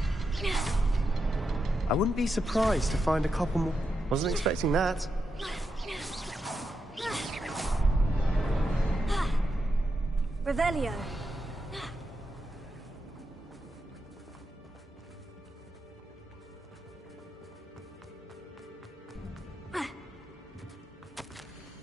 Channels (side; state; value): both; normal; correlation 0.86